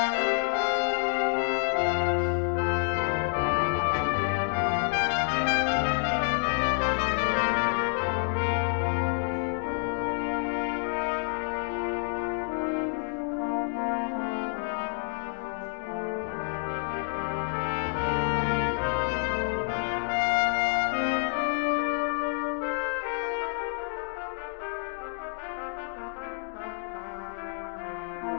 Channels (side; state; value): right; silent; 59 dB below the other